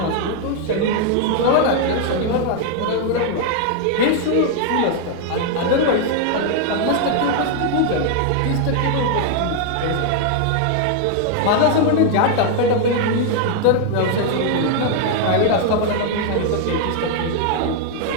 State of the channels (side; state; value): both; different; correlation 0.00